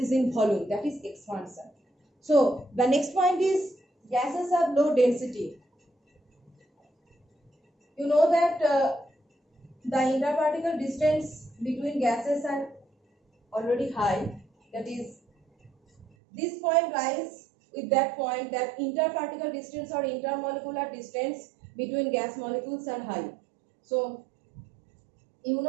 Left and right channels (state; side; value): drops out; left; at 16.1 s